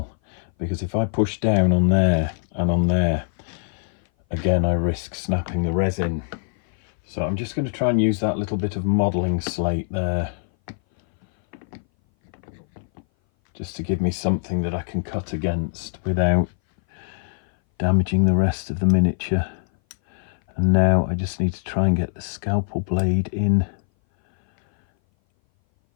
because if I push down on there and on there, again I risk snapping the resin. So I'm just going to try and use that little bit of modelling slate there, just to give me something that I can cut against without damaging the rest of the miniature. And now I just need to try and get the scalpel blade in.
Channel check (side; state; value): right; silent; 59 dB below the other